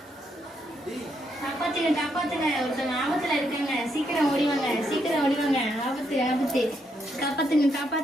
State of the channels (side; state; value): both; normal; correlation 0.77